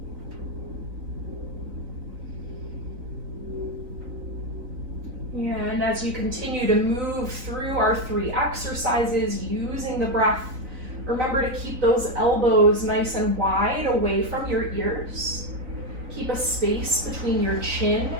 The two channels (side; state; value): left; late; 4.0 ms